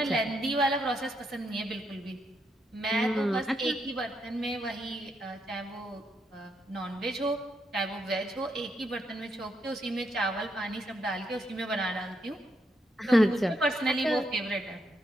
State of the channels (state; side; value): normal; both; correlation 0.78